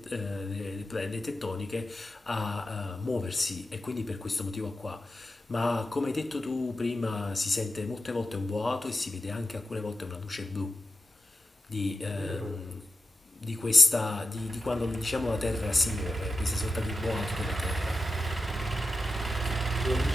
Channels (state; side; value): normal; both; correlation 0.92